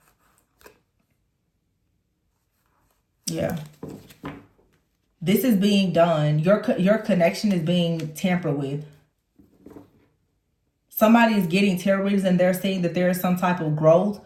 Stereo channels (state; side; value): identical; both; correlation 1.00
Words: Yeah. This is being done. Your connection is being tampered with. Somebody is getting tarot readings and they're saying that there is some type of growth,